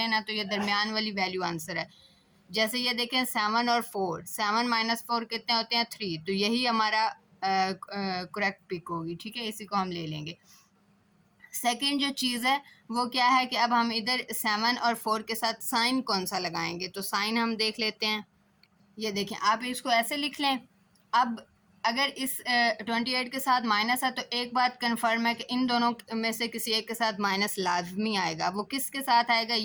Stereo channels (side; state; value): both; identical; correlation 1.00